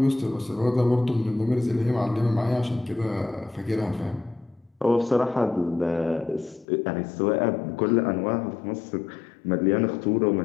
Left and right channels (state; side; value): drops out; right; at 6.7 s